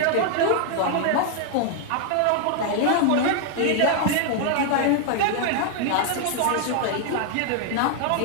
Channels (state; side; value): different; both; correlation 0.00